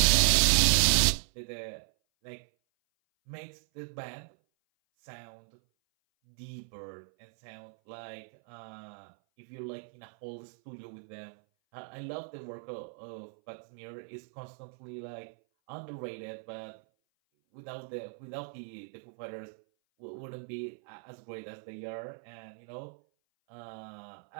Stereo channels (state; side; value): silent; left; 54 dB below the other